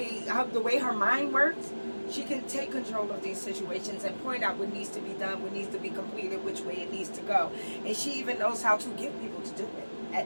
the way her mind works, she can take control of these situations and point out what needs to be done, what needs to be completed, which way it needs to go. And she even knows how to get people to do it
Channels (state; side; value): inverted; both; correlation -1.00